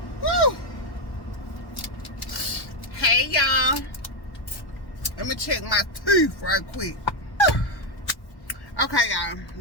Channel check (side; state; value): right; late; 1.1 ms